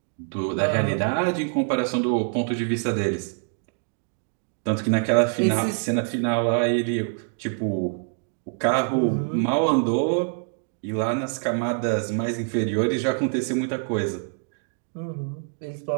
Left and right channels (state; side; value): silent; left; 62 dB below the other